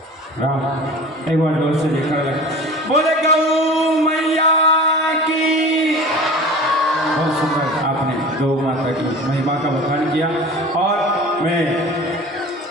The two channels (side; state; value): both; normal; correlation 0.38